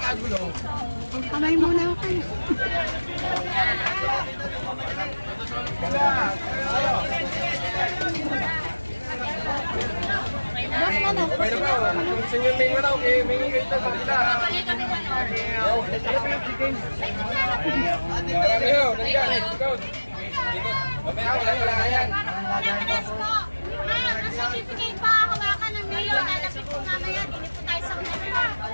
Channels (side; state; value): both; inverted; correlation -1.00